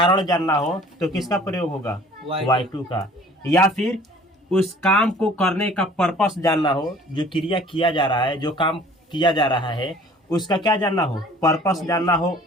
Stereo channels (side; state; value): both; normal; correlation 0.51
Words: जानना हो तो किसका प्रयोग होगा? Y2 का। या फिर उस काम को करने का पर्पस जानना हो, जो क्रिया किया जा रहा है, जो काम किया जा रहा है, उसका क्या जानना हो? पर्पस जानना हो,